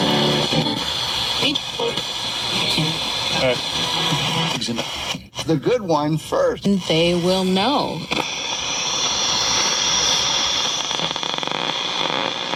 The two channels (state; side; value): identical; both; correlation 1.00